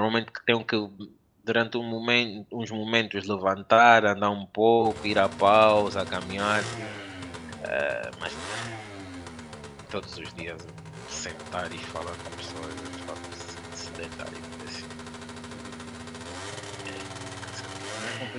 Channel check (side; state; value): both; identical; correlation 1.00